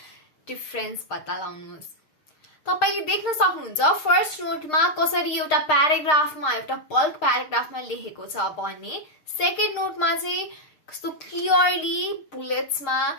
difference पत्ता लगाउनुहोस्। तपाईले देख्न सक्नुहुन्छ फर्स्ट नोटमा कसरी एउटा प्याराग्राफमा एउटा बल्क प्याराग्राफमा लेखेको छ भने सेकेन्ड नोटमा चाहिँ कस्तो क्लियरली बुलेट्समा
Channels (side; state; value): right; late; 6.6 ms